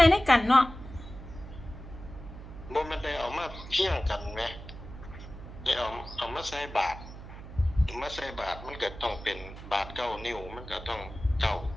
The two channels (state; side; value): noise; right; hum, 13 dB below the sound